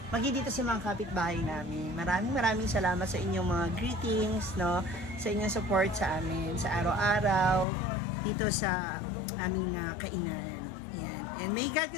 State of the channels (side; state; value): right; drops out; at 7.7 s